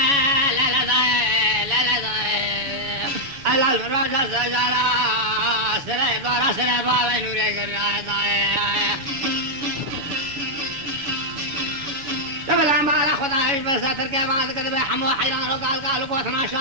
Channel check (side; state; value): left; late; 6.8 ms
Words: الراجل سجارة سري دورة سري بابا نوري قرنا قبل عم على خدايش بس تركب عند كذا حمو حيران وقال قالوا قوتنا